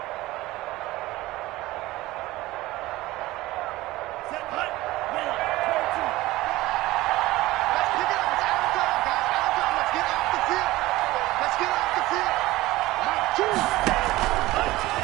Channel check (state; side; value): quieter; left; 18.2 dB